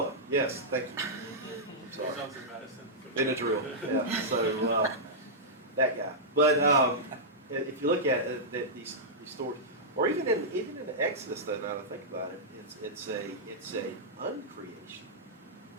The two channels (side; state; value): both; normal; correlation -0.11